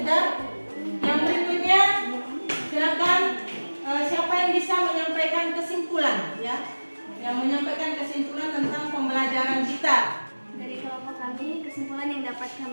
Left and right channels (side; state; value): both; inverted; correlation -1.00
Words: Dan yang berikutnya silakan siapa yang bisa menyampaikan kesimpulan ya, yang menyampaikan kesimpulan tentang pembelajaran kita. Dari kelompok kami, kesimpulan yang dapat